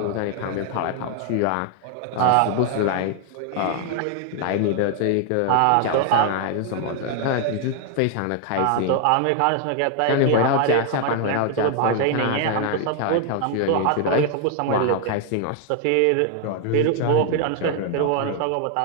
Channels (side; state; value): both; different; correlation 0.00